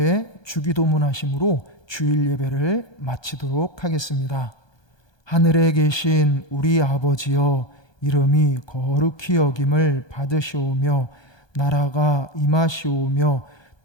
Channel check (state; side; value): late; right; 1.2 ms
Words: 주기도문 하심으로 주일 예배를 마치도록 하겠습니다. 하늘에 계신 우리 아버지여 이름이 거룩히 여김을 받으시오며 나라가 임하시오며